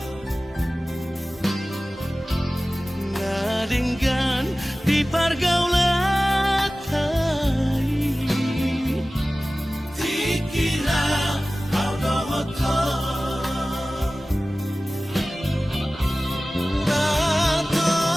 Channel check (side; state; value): both; normal; correlation 0.97